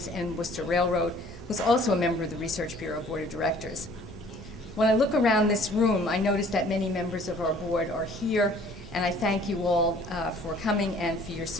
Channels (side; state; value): both; normal; correlation 0.54